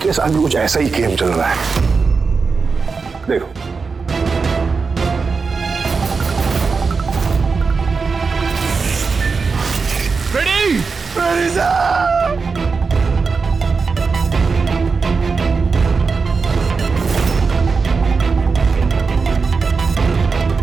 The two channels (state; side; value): quieter; left; 4.8 dB